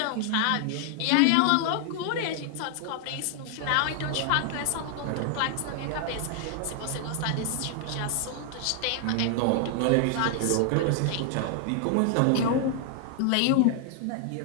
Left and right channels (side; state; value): both; different; correlation 0.00